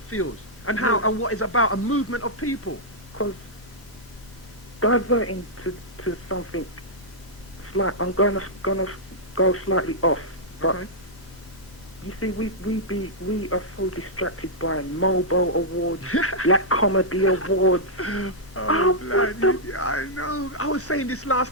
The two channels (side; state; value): both; normal; correlation -0.09